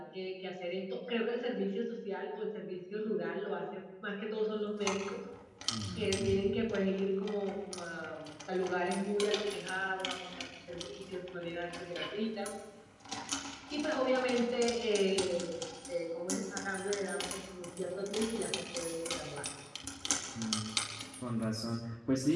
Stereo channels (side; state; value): both; identical; correlation 1.00